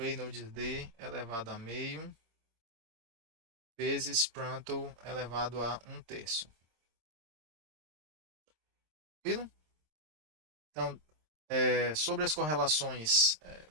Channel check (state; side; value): late; left; 26 ms